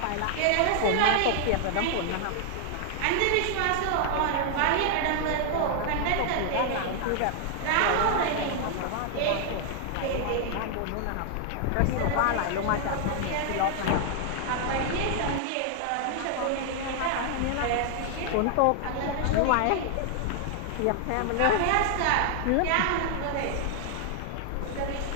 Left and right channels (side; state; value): both; different; correlation 0.00